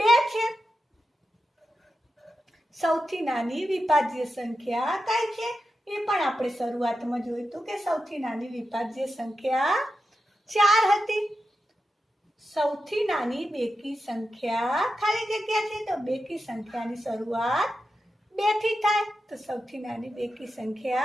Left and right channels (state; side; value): normal; both; correlation 0.90